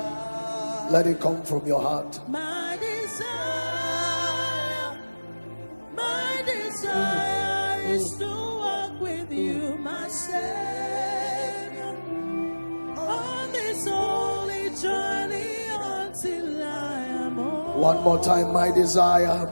Let it come from your heart. My desire is to walk with you, my Savior, on this holy journey until I am home. One more time, my desire,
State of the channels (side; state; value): both; inverted; correlation -1.00